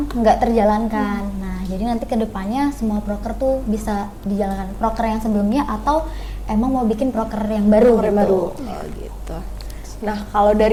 nggak terjalankan. Nah, jadi nanti kedepannya semua proker tuh bisa dijalankan, proker yang sebelumnya atau emang mau bikin proker yang baru Proker gitu. baru. Oh gitu. Nah, kalau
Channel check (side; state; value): both; identical; correlation 1.00